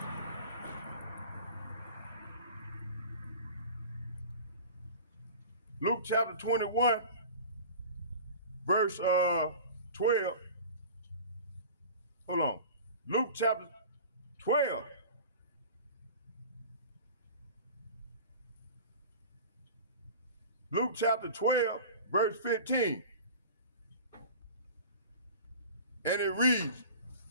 Luke chapter 21, verse 12. Hold on. Luke chapter 12. Luke chapter 12, verse 15. And it reads,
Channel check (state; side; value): inverted; both; correlation -0.39